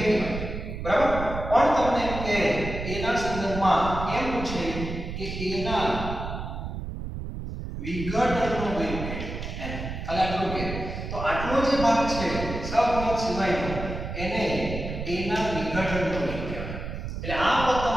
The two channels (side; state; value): right; noise; rumble, 6 dB below the sound